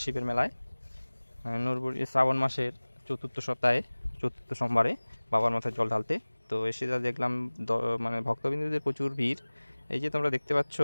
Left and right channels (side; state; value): both; inverted; correlation -1.00